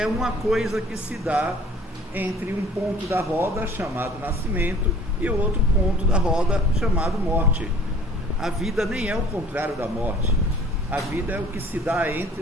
uma coisa que se dá entre um ponto da roda chamado nascimento e o outro ponto da roda chamado morte. A vida nem é o contrário da morte. A vida é o que se dá entre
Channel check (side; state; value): both; normal; correlation 0.51